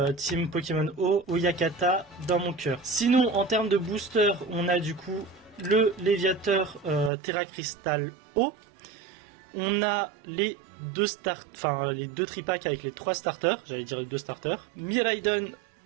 Team Pokémon O, Oyakata dans mon cœur. Sinon, en termes de booster, on a du coup le Léviateur Terra Crystal O. On a les deux tripacks avec les trois starters, j'allais dire les deux starters, Miraidon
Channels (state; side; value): drops out; left; at 7.1 s